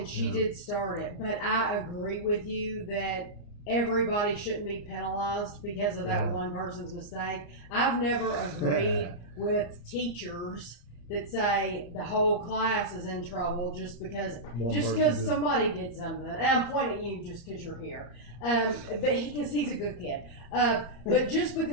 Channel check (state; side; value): late; right; 34 ms